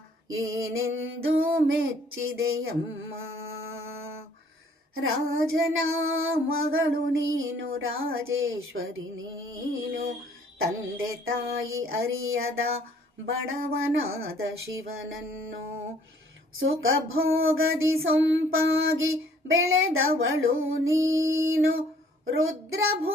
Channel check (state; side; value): normal; both; correlation 0.59